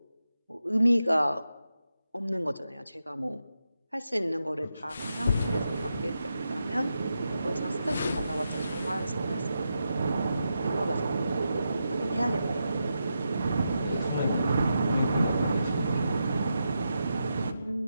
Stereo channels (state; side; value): inverted; both; correlation -0.87